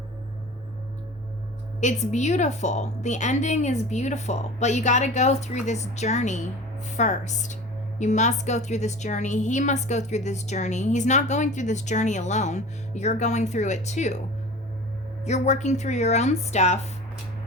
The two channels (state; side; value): normal; both; correlation 0.38